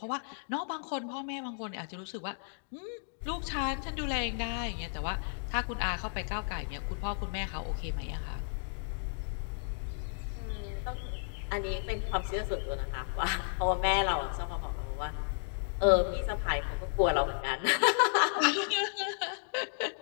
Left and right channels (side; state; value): right; silent; digital silence